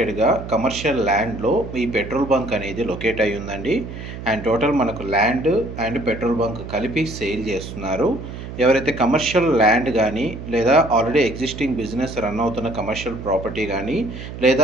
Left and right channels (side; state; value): right; noise; hum, 10 dB below the sound